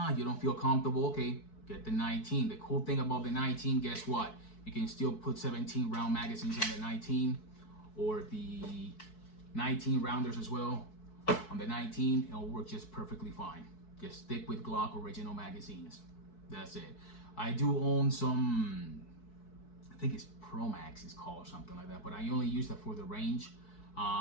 you don't feel comfortable, okay, get the 19. The cool thing about the 19, guess what? You can still put 17 round magazines on the 19 or the 19 rounders as well on the 19. It'll work just perfectly fine. Just stick with Glock original magazines. That's it. I do own some, I think it's Pro Max is called or something like that, but I only use that for the range.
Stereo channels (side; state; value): right; late; 4.6 ms